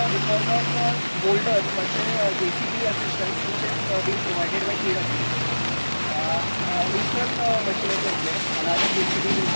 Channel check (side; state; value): both; inverted; correlation -1.00